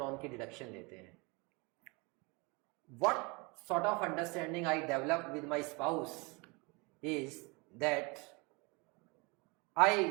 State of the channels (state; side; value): quieter; left; 28.1 dB